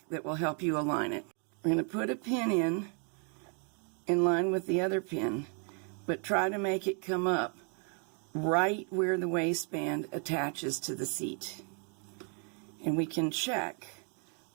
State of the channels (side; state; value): left; quieter; 39.5 dB